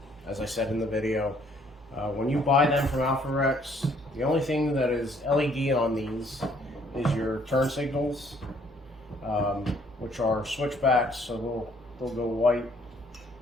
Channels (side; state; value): both; normal; correlation 0.63